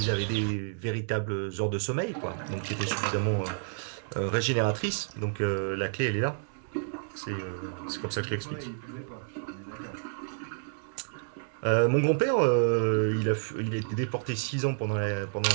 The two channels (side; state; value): left; silent; digital silence